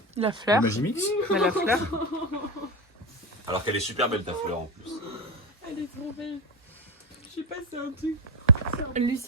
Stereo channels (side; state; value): both; normal; correlation 0.17